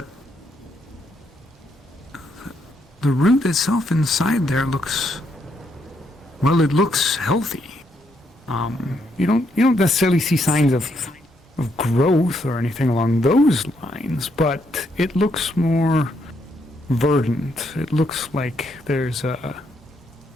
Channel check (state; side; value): normal; both; correlation 0.75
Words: the root itself inside there looks, well, it looks healthy. You don't necessarily see signs of growth or anything along those lines, but it looks more verdant. It looks like there's it